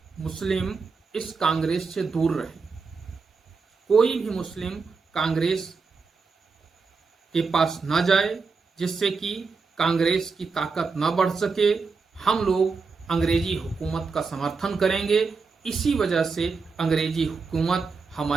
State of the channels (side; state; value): left; quieter; 4.7 dB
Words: मुस्लिम इस कांग्रेस से दूर रहे। कोई भी मुस्लिम कांग्रेस के पास ना जाए, जिससे कि कांग्रेस की ताकत ना बढ़ सके। हम लोग अंग्रेजी हुकूमत का समर्थन करेंगे, इसी वजह से अंग्रेजी हुकूमत